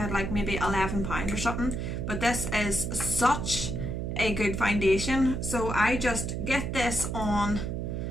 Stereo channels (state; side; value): noise; right; hum, 3 dB below the sound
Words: like maybe £11 or something, but this is such a good foundation. So I just get this on